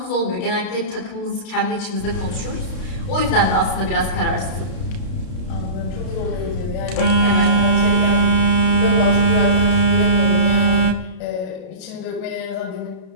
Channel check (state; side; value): late; right; 32 ms